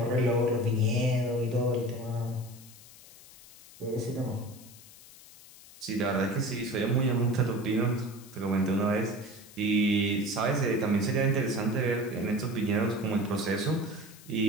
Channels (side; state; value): left; noise; hiss, 20 dB below the sound